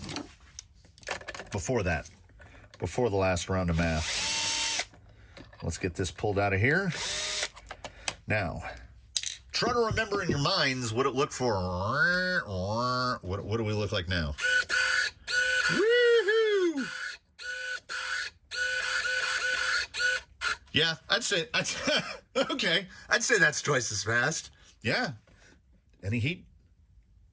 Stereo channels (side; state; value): both; identical; correlation 1.00